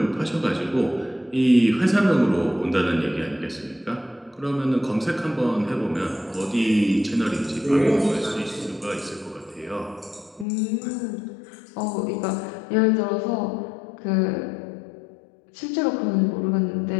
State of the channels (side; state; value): right; drops out; at 10.5 s